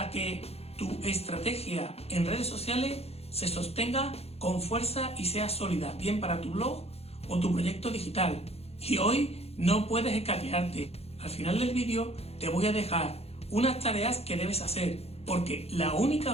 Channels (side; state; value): right; late; 0.29 ms